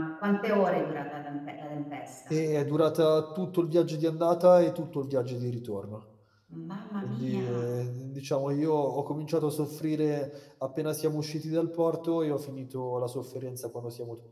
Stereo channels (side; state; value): both; identical; correlation 1.00